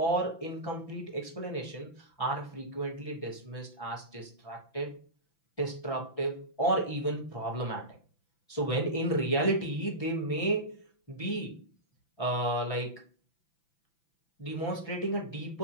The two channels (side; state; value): right; late; 5.9 ms